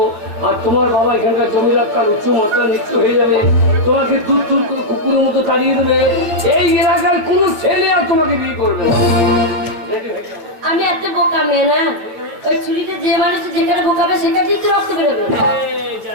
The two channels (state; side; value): late; left; 9.0 ms